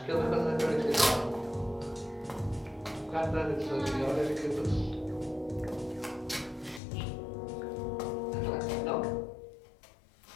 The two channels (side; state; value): right; drops out; at 6.8 s